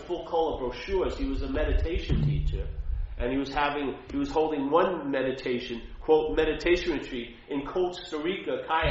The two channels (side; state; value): both; identical; correlation 1.00